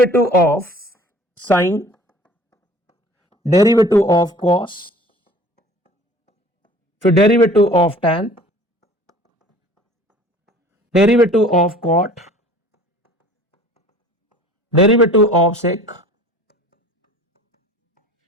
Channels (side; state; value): both; normal; correlation 0.48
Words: of sine, derivative of cos, फिर derivative of tan, derivative of cot, derivative of sec,